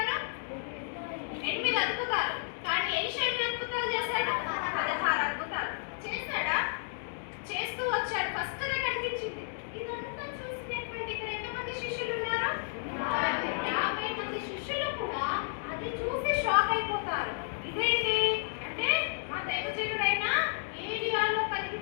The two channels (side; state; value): right; silent; digital silence